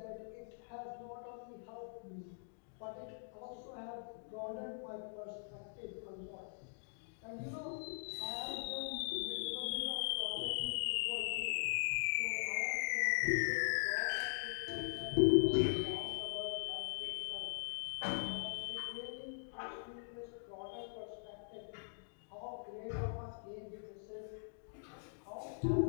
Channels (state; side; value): silent; right; digital silence